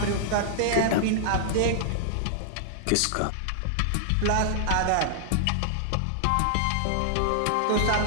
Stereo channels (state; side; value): different; both; correlation -0.01